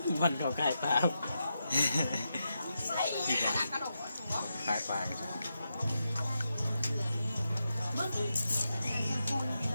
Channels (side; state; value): both; inverted; correlation -0.86